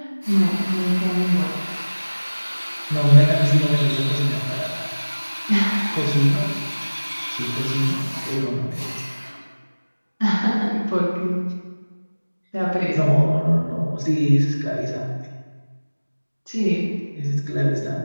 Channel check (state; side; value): inverted; both; correlation -1.00